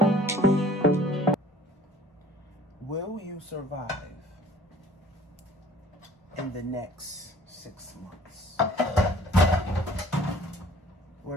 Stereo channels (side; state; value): both; normal; correlation 0.52